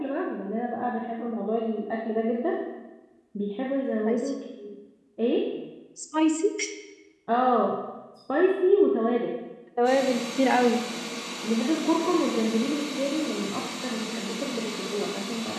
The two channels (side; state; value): both; identical; correlation 1.00